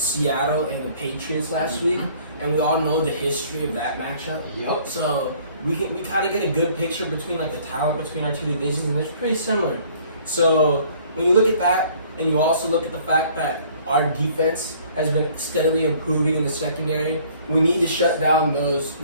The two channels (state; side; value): inverted; both; correlation -0.56